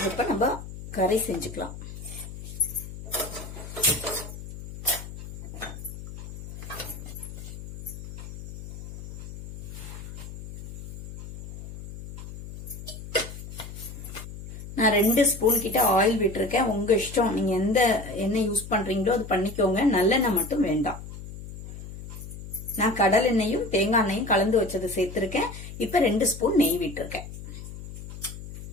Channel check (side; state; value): left; noise; hum, 11 dB below the sound